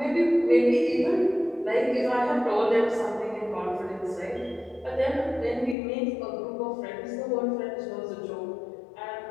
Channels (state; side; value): drops out; right; at 5.8 s